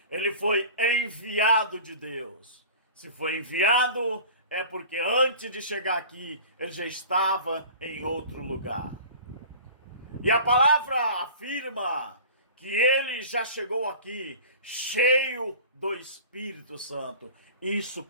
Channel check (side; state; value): both; inverted; correlation -0.41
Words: ele foi enviado de Deus. Se foi enviado, é porque antes de chegar aqui, ele já estava em outro lugar. E a palavra afirma que ele já chegou aqui cheio do Espírito Santo. Isso